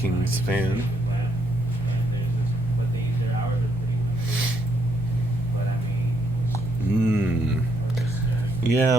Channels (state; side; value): normal; both; correlation 0.73